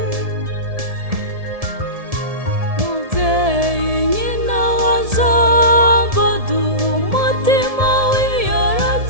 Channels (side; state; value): left; late; 1.7 ms